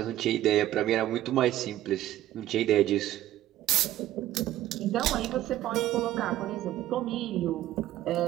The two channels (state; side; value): quieter; left; 13.7 dB